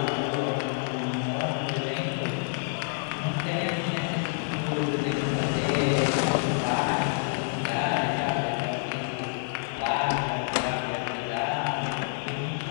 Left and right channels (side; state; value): right; silent; digital silence